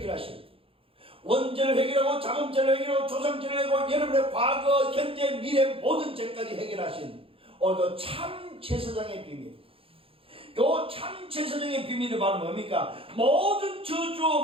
원죄를 해결하고 자금죄를 해결하고 조상죄를 해결하고 여러분의 과거, 현재, 미래 모든 죄까지 해결하신 오늘도 참 제사장의 비밀. 요 참 제사장의 비밀이 바로 뭡니까? 모든 저주,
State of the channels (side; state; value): left; late; 0.27 ms